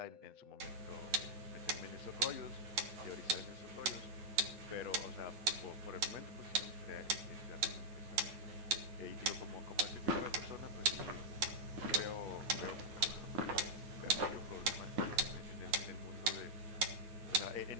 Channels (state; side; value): late; left; 9.4 ms